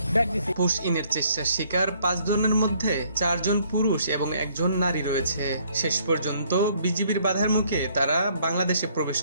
ব্যাক দিছে। পুশ ইনের চেষ্টার শিকার ৫ জনের মধ্যে ৪ জন পুরুষ এবং ১ জন নারী রয়েছে। শেষ পর্যন্ত বিজিবির বাধার মুখে তারা বাংলাদেশে প্রবেশ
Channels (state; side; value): inverted; both; correlation -0.64